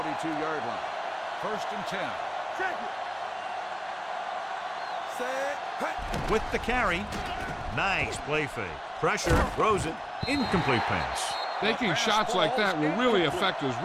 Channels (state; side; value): identical; both; correlation 1.00